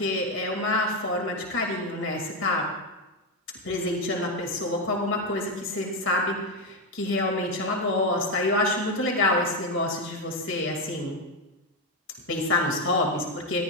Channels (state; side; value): normal; both; correlation 0.08